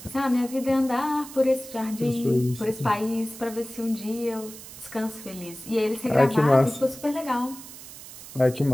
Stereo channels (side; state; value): right; noise; hiss, 15 dB below the sound